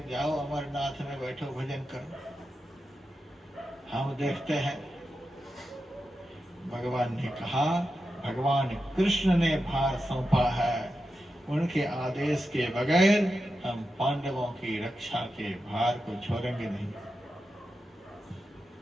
जाओ अमरनाथ में बैठो भजन करो, हम देखते हैं। भगवान ने कहा, भगवान कृष्ण ने भार सौंपा है, उनके आदेश के बगैर हम पांडवों की रक्षा के भार को छोड़ेंगे नहीं।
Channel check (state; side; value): normal; both; correlation 0.90